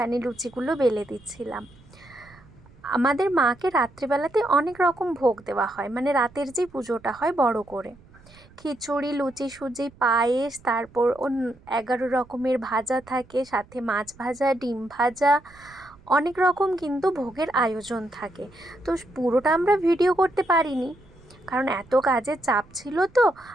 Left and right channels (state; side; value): noise; right; rumble, 25 dB below the sound